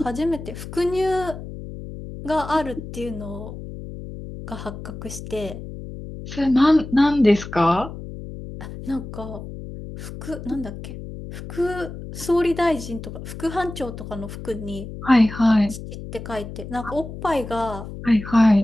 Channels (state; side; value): noise; left; hum, 11 dB below the sound